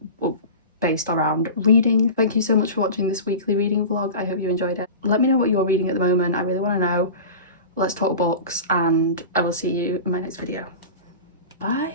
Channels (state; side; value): inverted; both; correlation -0.33